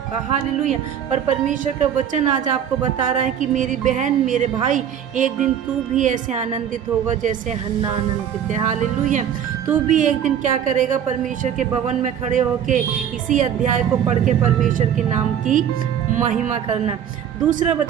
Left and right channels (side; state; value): left; quieter; 9.1 dB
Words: हालेलुया। पर परमेश्वर का वचन आज आपको बता रहा है कि मेरी बहन, मेरे भाई, एक दिन तू भी ऐसे आनंदित होगा जैसे हन्ना आनंदित है। हालेलुया। तू भी एक दिन क्या करेगा, परमेश्वर के भवन में खड़े होके इसी अध्याय को पढ़ के परमेश्वर के नाम की महिमा करना। दूसरा